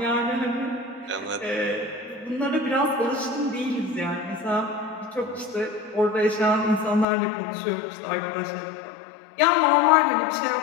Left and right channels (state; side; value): drops out; right; at 7.1 s